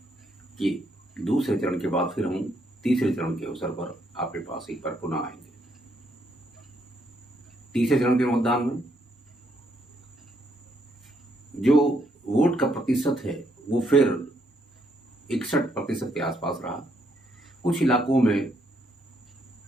कि दूसरे चरण के बाद फिर हम तीसरे चरण के अवसर पर आपके पास एक बार पुनः आएंगे। तीसरे चरण के मतदान में जो वोट का प्रतिशत है वो फिर 61% के आसपास रहा। कुछ इलाकों में,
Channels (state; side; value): normal; both; correlation 0.74